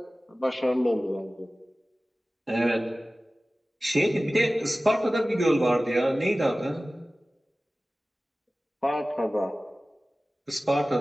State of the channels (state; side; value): normal; both; correlation 0.97